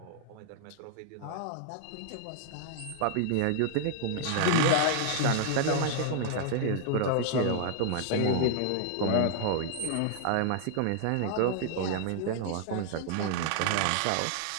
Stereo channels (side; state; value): both; different; correlation -0.01